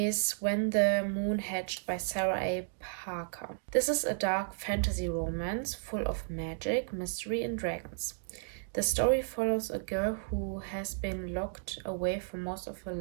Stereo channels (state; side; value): silent; left; digital silence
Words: When the Moon Hatched by Sarah A. Parker. This is a dark fantasy romance full of magic, mystery, and dragons. The story follows a girl who has been locked away for most of her